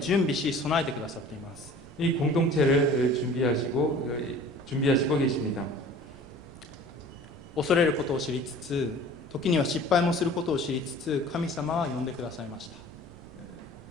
備し備えてくださっています。 이 공동체를 준비하시고 계십니다. 恐れることを知りつつ、時には失敗もすることを知りつつ、神様は呼んでくださいました。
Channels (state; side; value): noise; right; rumble, 25 dB below the sound